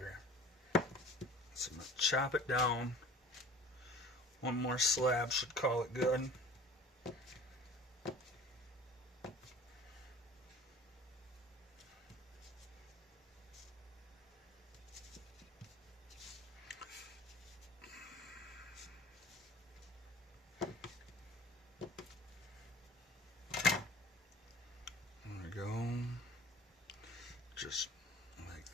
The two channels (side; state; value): both; normal; correlation 0.44